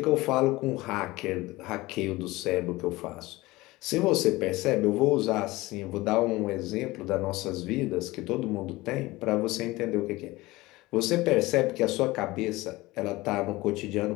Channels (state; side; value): quieter; right; 20.0 dB